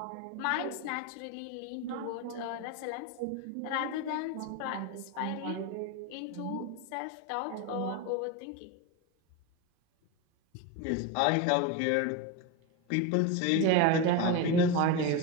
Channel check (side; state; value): both; different; correlation 0.04